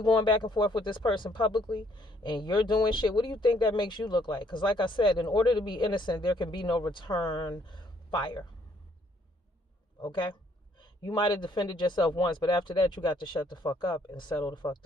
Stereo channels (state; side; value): normal; both; correlation 0.66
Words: going back and forth with this person publicly and you're doing shit, what do you think that makes you look like? Because like I said, in order to be innocent, there can be no return fire. Okay? You might have defended yourself once, but after that, you got to shut the fuck up and settle the fuck